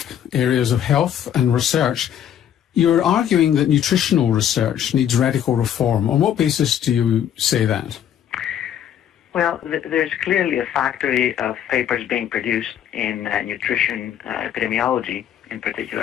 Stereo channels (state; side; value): quieter; right; 9.9 dB